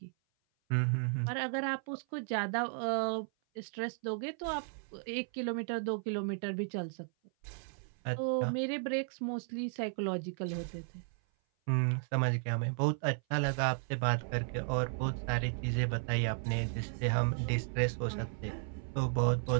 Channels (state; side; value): silent; left; 55 dB below the other